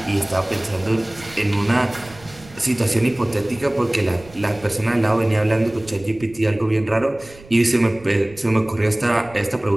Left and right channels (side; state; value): right; noise; rumble, 22 dB below the sound